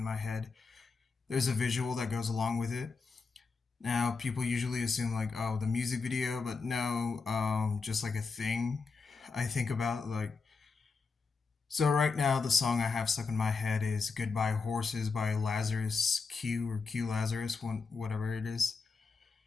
my head, there's a visual that goes along with it. Now, people usually assume like, oh, the music video, but no, just like a thing I think about. So right now the song I have stuck in my head is Goodbye Horses by Lazarus Q or Q Lazarus, whatever it is.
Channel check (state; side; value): quieter; right; 4.6 dB